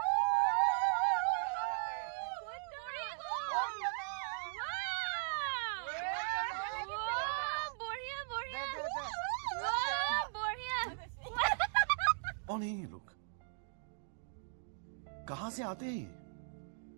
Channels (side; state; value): left; silent; digital silence